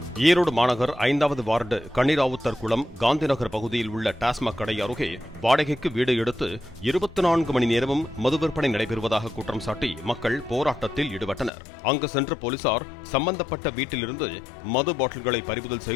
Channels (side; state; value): right; drops out; at 11.5 s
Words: ஈரோடு மாநகர் 5வது வார்டு கன்னிராவுத்தர் குளம் காந்திநகர் பகுதியில் உள்ள டாஸ்மாக் கடை அருகே வாடகைக்கு வீடு எடுத்து 24 மணி நேரமும் மது விற்பனை நடைபெறுவதாக குற்றம் சாட்டி மக்கள் போராட்டத்தில் ஈடுபட்டனர். அங்கு சென்ற போலீசார் சம்பந்தப்பட்ட வீட்டிலிருந்து மது பாட்டில்களை பறிமுதல்